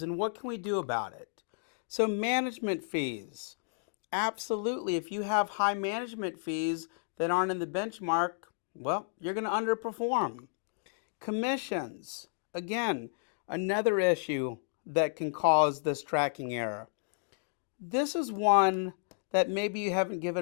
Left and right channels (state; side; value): silent; right; digital silence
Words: and what can we do about it. So management fees. Absolutely. If you have high management fees that aren't in the benchmark, well, you're going to underperform. Commissions. Again, another issue that can cause this tracking error. This is one that maybe you haven't given